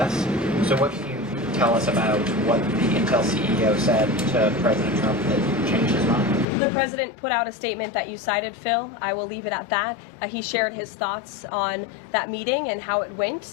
So what can you tell us about what the Intel CEO said to President Trump that changed his mind? The president put out a statement that you cited, Phil. I will leave it at that. He shared his thoughts on that meeting and how it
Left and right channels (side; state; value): right; drops out; at 6.5 s